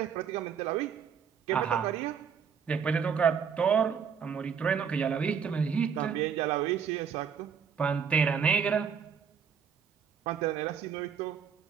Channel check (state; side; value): quieter; left; 7.0 dB